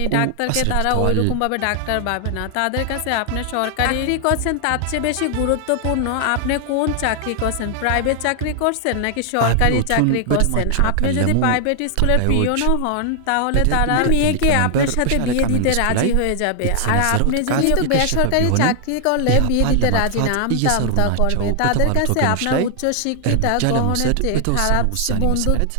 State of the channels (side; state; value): both; different; correlation 0.00